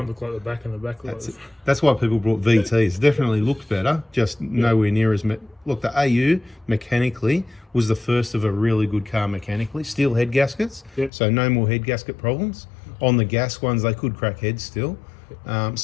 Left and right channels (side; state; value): right; drops out; at 11.1 s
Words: looked like the back and the back looked like That's why people brought VTs. Definitely looked better, just nowhere near as. Look, the AU mechanically was the first of a really good car mechanically. Steel head gaskets, so no more head gasket problems. On the gas ones, they could crack heads still.